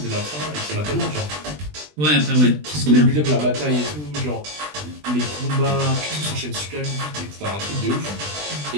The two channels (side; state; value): left; late; 20 ms